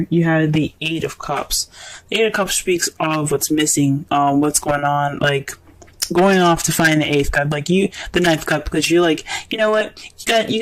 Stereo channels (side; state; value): both; identical; correlation 1.00